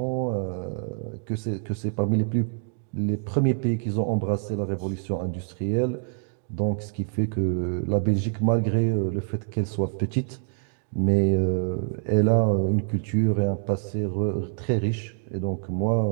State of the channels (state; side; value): silent; left; 57 dB below the other